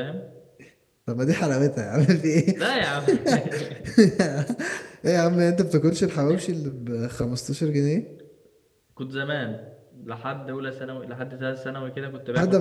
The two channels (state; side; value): identical; both; correlation 1.00